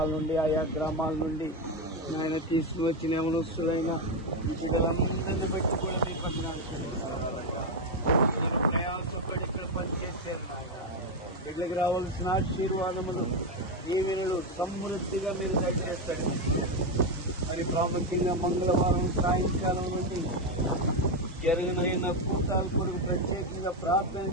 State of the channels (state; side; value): normal; both; correlation 0.08